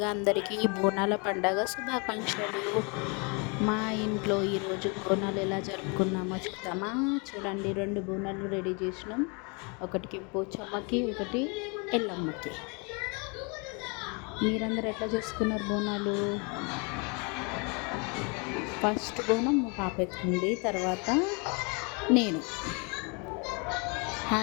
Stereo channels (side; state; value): right; quieter; 32.5 dB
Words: అందరికీ బోనాల పండగ శుభాకాంక్షలు. మా ఇంట్లో ఈరోజు బోనాలు ఎలా జరుపుకున్నామో చూద్దామా. చూడండి, 2 బోనాలు రెడీ చేసినాం. ఒకటికి పోచమ్మకి, ఒకటి ఎల్లమ్మకి. మీరందరూ ఎట్లా చేసుకున్నారు బోనాలు? ఫస్ట్ బోనం మా పాప ఎత్తుకుంది, తర్వాత నేను.